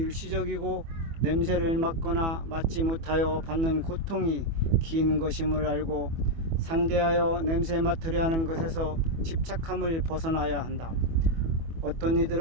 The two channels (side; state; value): left; late; 24 ms